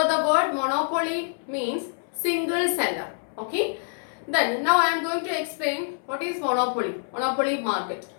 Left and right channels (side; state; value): right; silent; 61 dB below the other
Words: the word monopoly means single seller. Okay. Then now I am going to explain what is monopoly. Monopoly market.